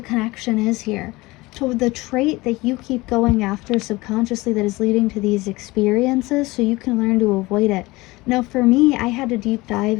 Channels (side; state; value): right; quieter; 21.2 dB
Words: is here. To the trait that you keep going after subconsciously that is leading to these experiences, so you can learn to avoid it. Now, for me, I had to deep